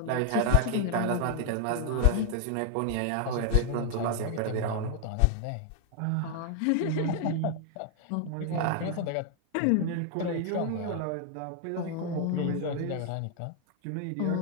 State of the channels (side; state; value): both; different; correlation 0.00